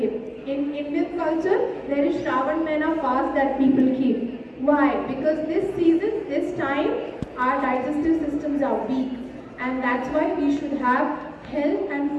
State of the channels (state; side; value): identical; both; correlation 1.00